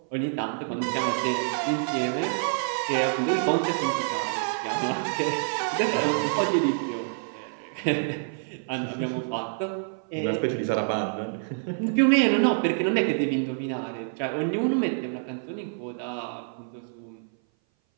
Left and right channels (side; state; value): left; silent; 57 dB below the other